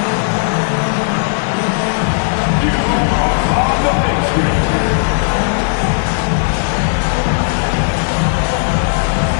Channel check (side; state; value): right; silent; digital silence